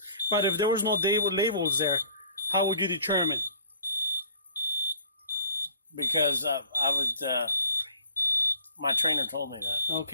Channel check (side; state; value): both; inverted; correlation -0.52